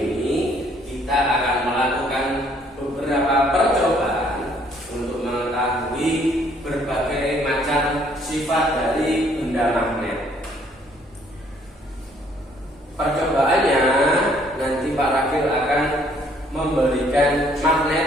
kita akan melakukan beberapa percobaan untuk mengetahui berbagai macam sifat dari benda magnet. Percobaannya nanti Pak Rakil akan memberikan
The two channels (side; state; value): both; normal; correlation 0.64